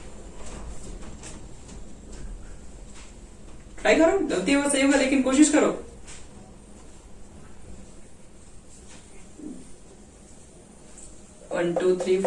ट्राई करो, गलती होगा सही होगा लेकिन कोशिश करो। One two three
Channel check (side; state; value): both; identical; correlation 1.00